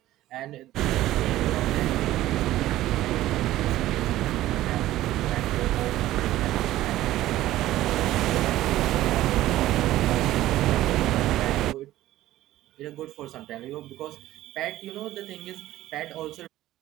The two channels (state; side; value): quieter; left; 15.0 dB